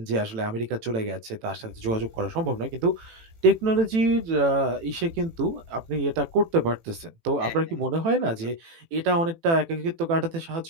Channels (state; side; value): late; left; 18 ms